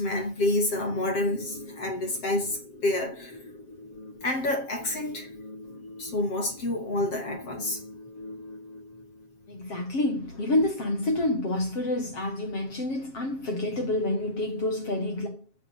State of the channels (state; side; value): late; right; 7.5 ms